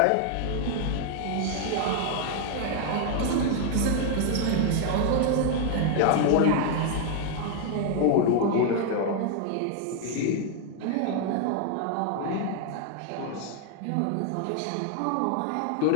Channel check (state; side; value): different; both; correlation 0.00